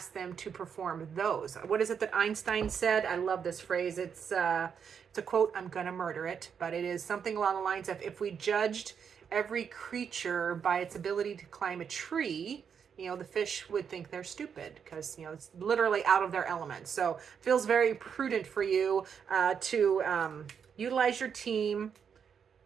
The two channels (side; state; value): left; quieter; 7.1 dB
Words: them to perform those. What is it that Einstein said? I love this phrase. It's a quote. I'm gonna murder it, but it is something along the lines of, if we judged every creature by its ability to climb a tree, the fish would think they're stupid, because it's literally out of their element. So it feels very prudent for you to utilize your team